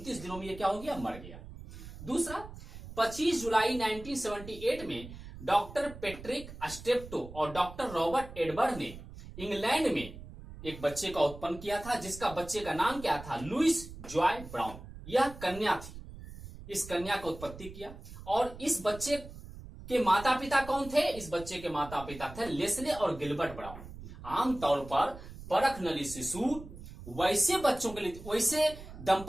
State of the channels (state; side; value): noise; right; rumble, 14 dB below the sound